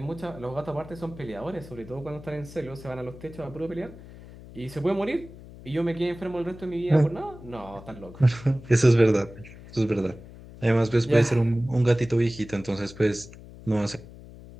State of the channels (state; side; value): noise; left; hum, 17 dB below the sound